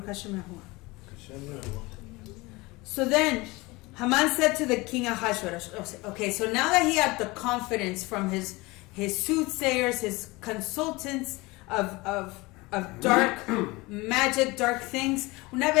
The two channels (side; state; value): right; quieter; 22.9 dB